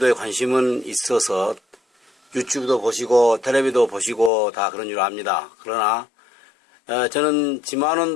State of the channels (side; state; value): right; drops out; at 4.3 s